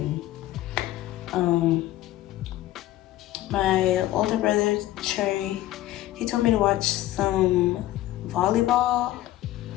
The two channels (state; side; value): quieter; right; 15.0 dB